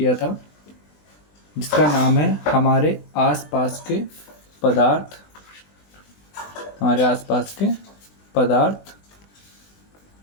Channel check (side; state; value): right; late; 20 ms